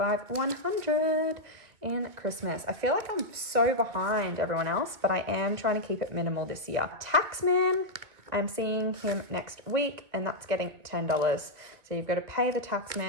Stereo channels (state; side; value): late; left; 1.9 ms